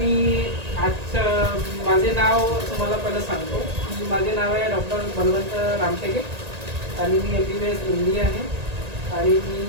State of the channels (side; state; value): left; late; 1.8 ms